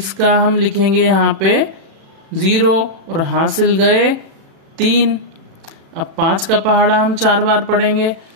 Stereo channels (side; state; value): left; late; 36 ms